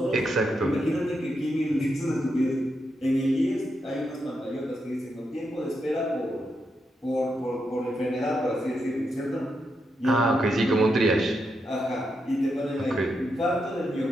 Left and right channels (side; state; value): both; normal; correlation 0.83